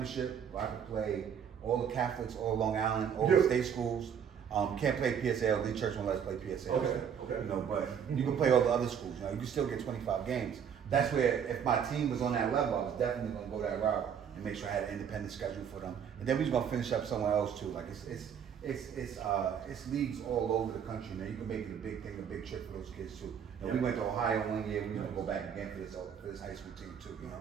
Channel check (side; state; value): left; quieter; 7.9 dB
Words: where I can play all the Catholics, all Long Island, all the state schools. Can't play PSAL. The church won't let us play PSAL. Okay. But you can play all the other schools. You can still get 25 games. That's where, if my team was on that level, I was definitely going to go that route and make sure I had an independent schedule for them. And then we was going to finish up somewhere else too. Like it's leagues all over the country. Now you can make it a big thing, a big trip for those kids too. We went to Ohio one year. We're gonna go back again for this high school team too.